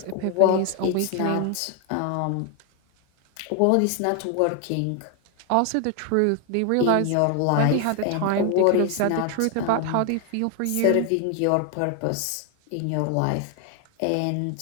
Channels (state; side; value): different; both; correlation 0.01